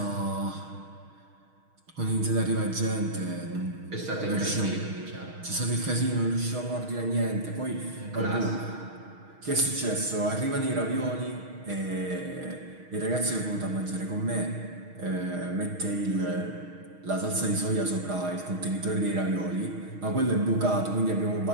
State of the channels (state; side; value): late; left; 6.4 ms